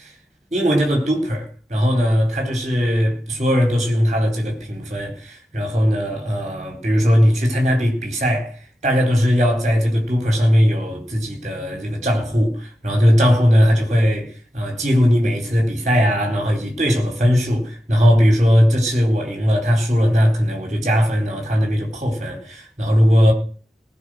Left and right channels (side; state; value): both; normal; correlation 0.91